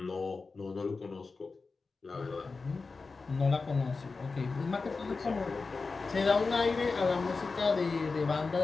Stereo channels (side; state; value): right; quieter; 4.2 dB